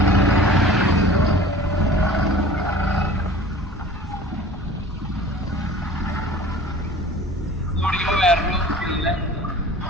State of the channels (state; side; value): normal; both; correlation 0.44